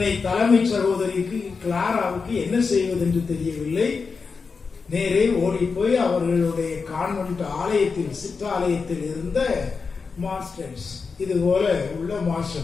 தலைமை சகோதரிக்கு கிளாராவுக்கு என்ன செய்வது என்று தெரியவில்லை. நேரே ஓடி போய் அவர்களுடைய கான்வென்ட் ஆலயத்தில் சிற்றாலயத்தில் இருந்த மாஸ்டர்ஸ், இது போல உள்ள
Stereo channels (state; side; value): quieter; right; 5.0 dB